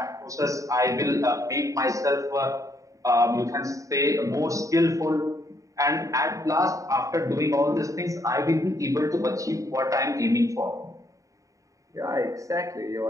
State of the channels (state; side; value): late; left; 0.16 ms